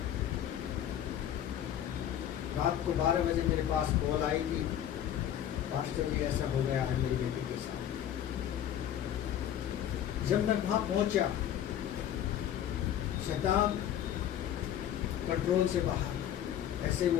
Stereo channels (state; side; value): quieter; right; 10.6 dB